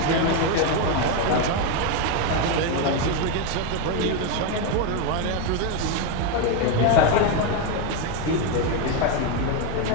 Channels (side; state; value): both; different; correlation 0.02